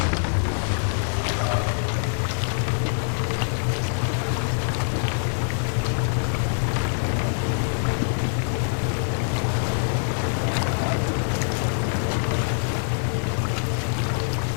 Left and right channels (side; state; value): right; silent; digital silence